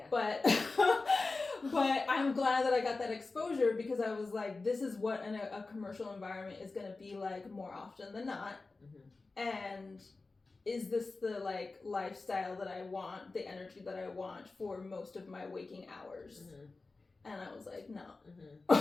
But but I'm glad that I got that exposure because I was like, this is what a commercial environment is going to be like more often than not. And is this the like lifestyle that I want, the energy that I want for most of my waking hours? And I was like, no.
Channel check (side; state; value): right; quieter; 3.7 dB